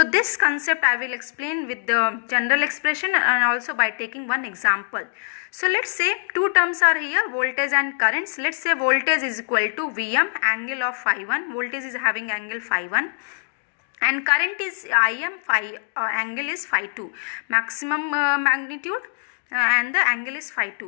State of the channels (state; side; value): silent; right; digital silence